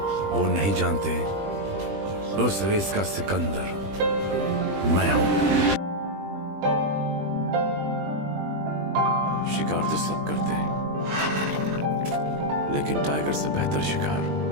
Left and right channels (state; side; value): late; left; 20 ms